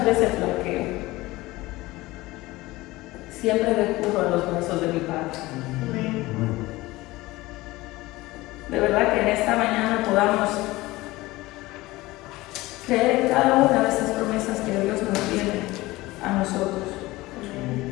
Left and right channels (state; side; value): quieter; right; 19.5 dB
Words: veces flaqueo, siempre recurro a los brazos de mi Padre. De verdad que en esta mañana podamos creer en cada una de estas promesas que Dios nos tiene a nosotros.